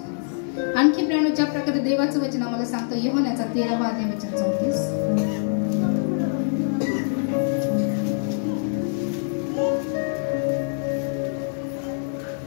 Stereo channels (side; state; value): right; silent; digital silence